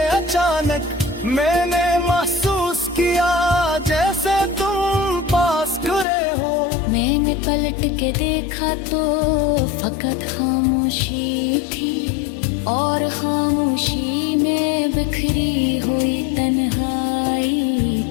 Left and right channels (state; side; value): drops out; right; at 6.1 s